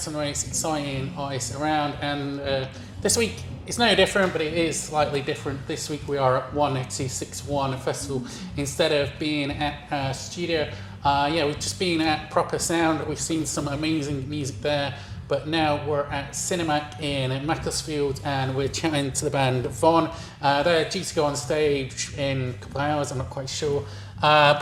some of the most exciting artists around, and this week it's no different, but it is slightly different. This week we are at 1261 Festival instead of being at a studio. We've just been at Proper Sound. We've seen some amazing music there, but now we're at Cinemac in Macclesfield and we're chatting to the band Von. They're due to go on stage in a couple of hours, I'm not quite sure.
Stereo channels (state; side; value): identical; both; correlation 1.00